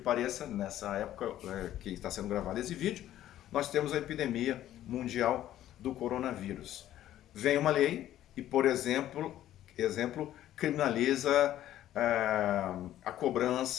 nessa época que está sendo gravado esse vídeo, nós temos a epidemia mundial do coronavírus. Vem uma lei e, por exemplo criminaliza a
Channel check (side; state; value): right; quieter; 12.7 dB